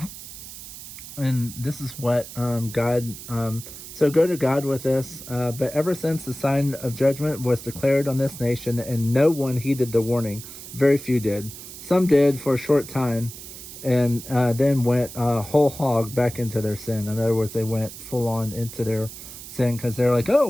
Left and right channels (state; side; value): noise; right; hiss, 13 dB below the sound